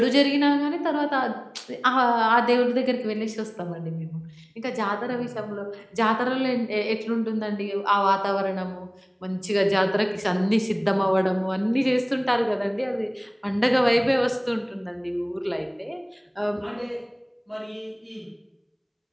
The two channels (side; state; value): both; identical; correlation 1.00